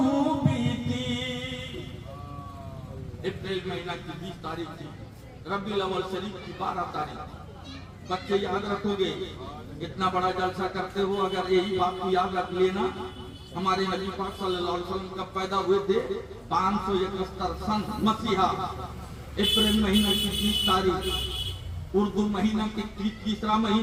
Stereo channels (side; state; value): both; identical; correlation 1.00